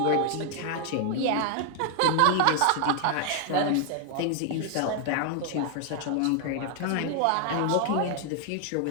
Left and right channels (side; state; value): both; different; correlation 0.00